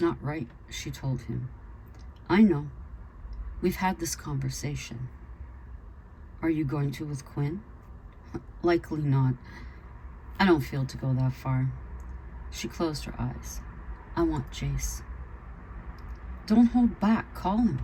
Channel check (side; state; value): both; identical; correlation 1.00